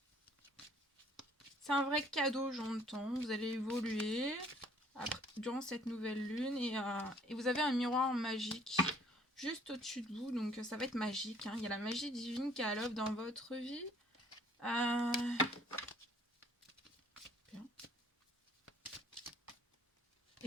C'est un vrai cadeau, j'entends. Vous allez évoluer durant cette nouvelle lune et vous avez un miroir magique juste au-dessus de vous, donc ça va être magique. Hein. Il y a la magie divine qui est à l'œuvre dans votre vie. Bien.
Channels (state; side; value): normal; both; correlation 0.58